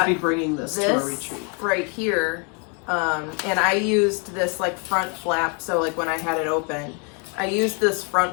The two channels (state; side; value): quieter; right; 36.6 dB